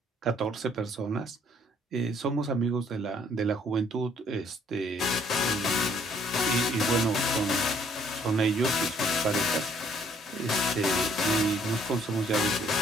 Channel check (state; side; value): normal; both; correlation 0.63